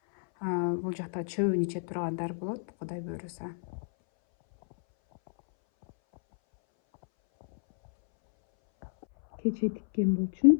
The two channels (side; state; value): right; silent; 58 dB below the other